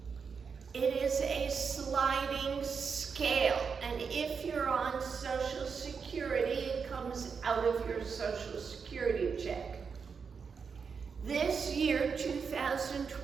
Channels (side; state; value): left; quieter; 5.8 dB